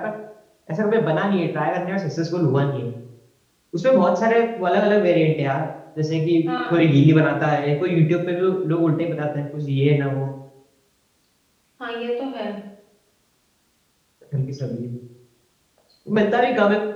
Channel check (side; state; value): both; identical; correlation 1.00